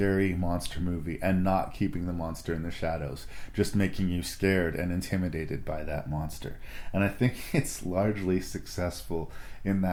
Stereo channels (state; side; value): identical; both; correlation 1.00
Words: monster movie and not keeping the monster in the shadows, just making you scared and intimidated by that monster. And I think it's largely successful in